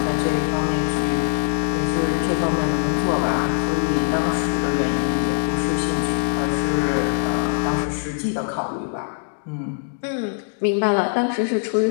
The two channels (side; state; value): right; silent; digital silence